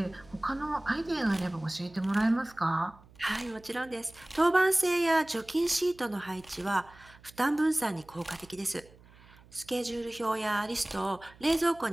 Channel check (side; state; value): right; noise; hum, 25 dB below the sound